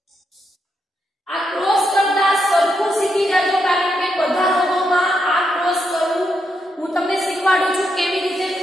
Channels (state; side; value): normal; both; correlation 0.81